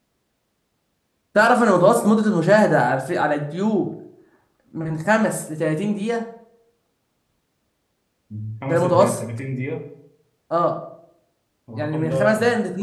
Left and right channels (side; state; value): both; identical; correlation 1.00